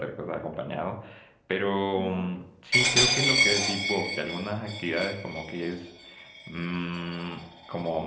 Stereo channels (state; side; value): identical; both; correlation 1.00